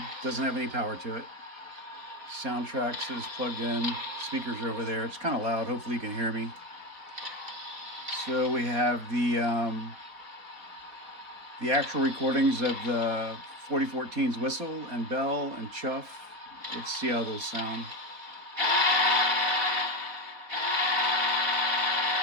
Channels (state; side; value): late; left; 4.1 ms